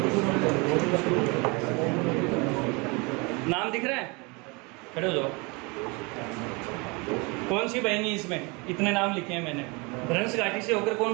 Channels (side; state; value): left; quieter; 28.4 dB